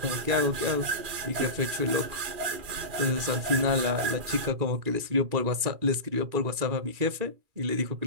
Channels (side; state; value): left; late; 2.4 ms